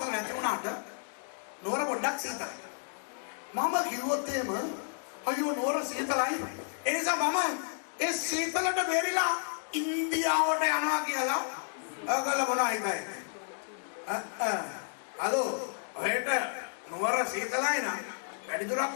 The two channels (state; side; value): silent; right; digital silence